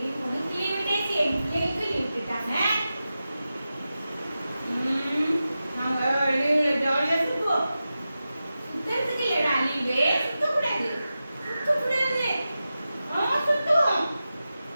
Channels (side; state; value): both; inverted; correlation -0.93